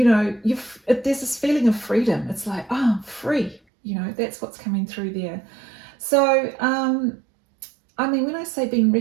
know, there's this feeling of freedom. It's like, oh, I'm free. You know, that's what's coming through there. So, I mean, when I say being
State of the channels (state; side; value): drops out; left; at 3.6 s